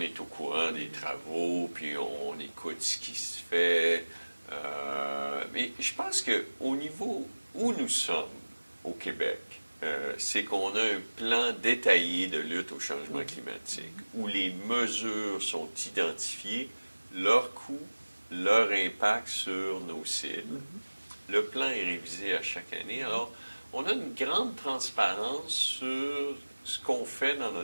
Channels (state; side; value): inverted; both; correlation -1.00